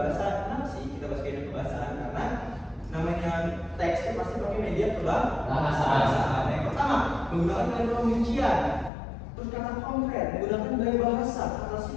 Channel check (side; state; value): right; drops out; at 8.9 s